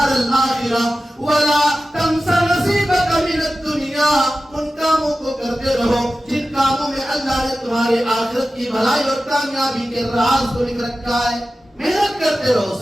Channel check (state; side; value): normal; both; correlation 0.94